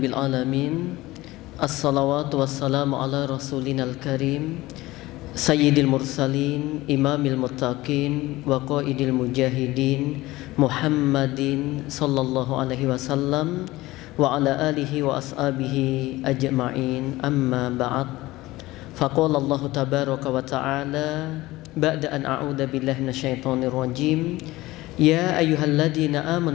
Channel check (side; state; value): right; quieter; 18.7 dB